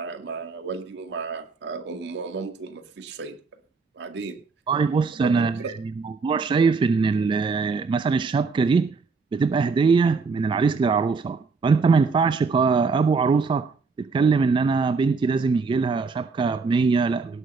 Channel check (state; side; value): quieter; left; 4.6 dB